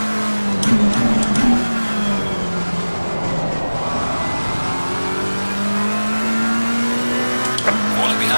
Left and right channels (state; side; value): inverted; both; correlation -1.00